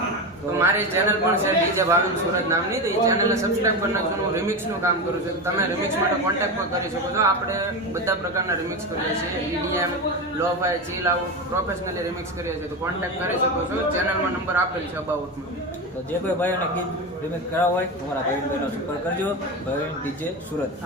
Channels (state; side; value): normal; both; correlation 0.19